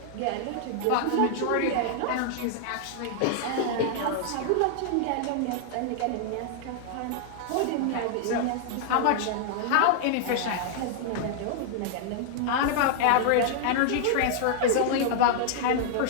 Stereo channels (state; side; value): different; both; correlation -0.01